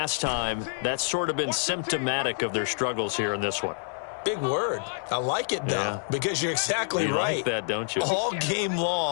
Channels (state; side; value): silent; right; digital silence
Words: time, that's sort of been symptomatic of their struggles here in this one. Big word. I like it, though, because you're exactly you right. Like that, don't you? All game